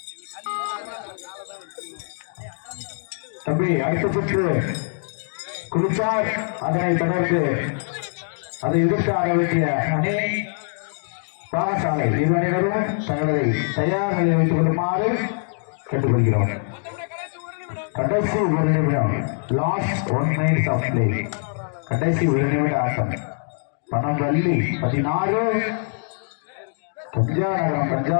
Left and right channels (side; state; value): right; silent; digital silence